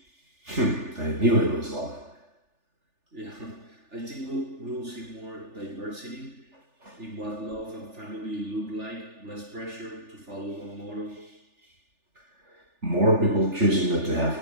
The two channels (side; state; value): left; late; 3.4 ms